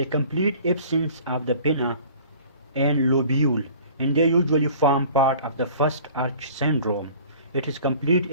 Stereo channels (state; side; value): inverted; both; correlation -0.47